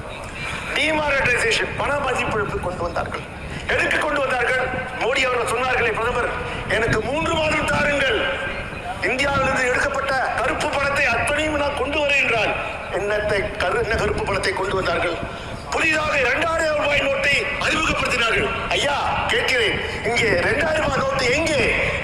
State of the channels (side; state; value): both; identical; correlation 1.00